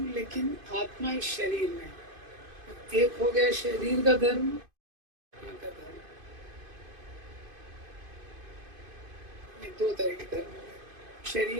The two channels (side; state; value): left; late; 2.5 ms